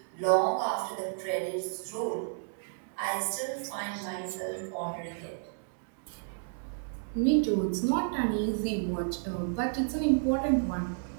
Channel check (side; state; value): left; silent; digital silence